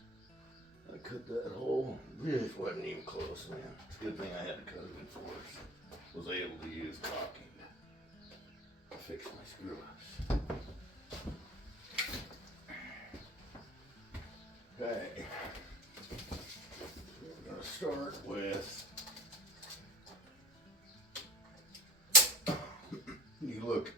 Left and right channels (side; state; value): both; normal; correlation 0.39